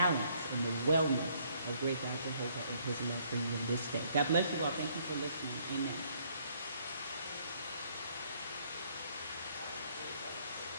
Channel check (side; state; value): both; inverted; correlation -0.66